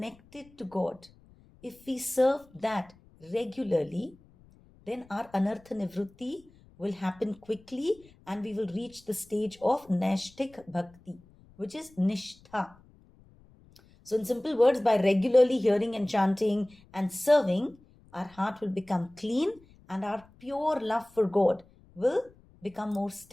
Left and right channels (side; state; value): left; noise; rumble, 27 dB below the sound